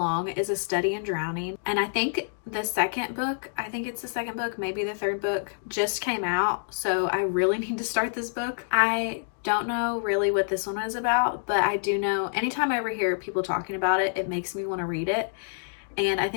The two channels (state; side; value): silent; right; digital silence